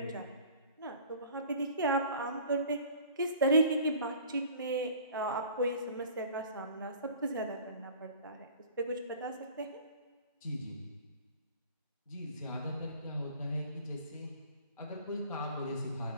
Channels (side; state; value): both; inverted; correlation -0.47